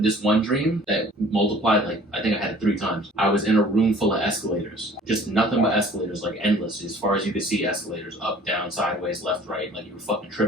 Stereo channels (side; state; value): both; normal; correlation 0.50